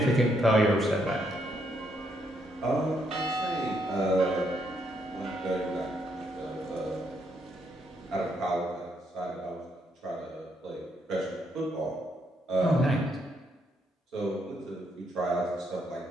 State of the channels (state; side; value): normal; both; correlation 0.75